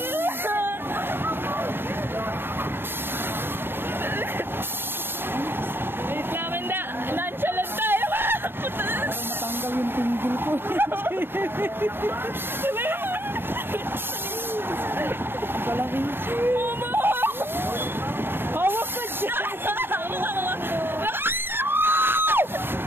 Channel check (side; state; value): left; late; 0.10 ms